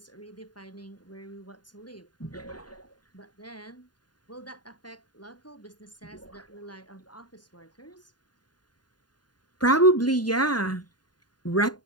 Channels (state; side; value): late; right; 0.70 ms